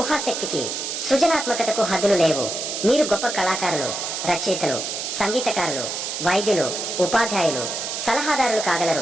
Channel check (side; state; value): right; noise; hiss, 4 dB below the sound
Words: సృజనాత్మకతకు హద్దులు లేవు. మీరు గొప్ప కళాకారులు, రచయితలు, సంగీతకారులు, వైద్యులు, ఉపాధ్యాయులు, సలహాదారులు